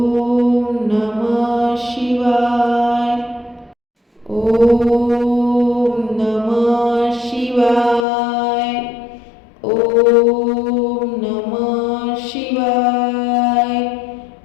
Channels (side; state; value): right; drops out; at 8.1 s